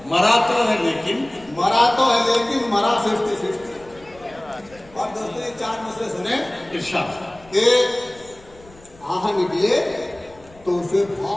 मरा तो है लेकिन मरा तो है लेकिन मरा 50-50। और दोस्तों ये 4 मिसरे सुने। इरशाद कि आह निकले तो उसे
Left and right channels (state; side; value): noise; left; rumble, 25 dB below the sound